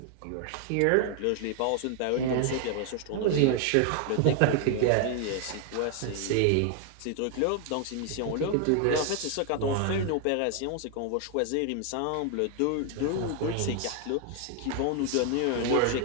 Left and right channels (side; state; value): both; different; correlation 0.00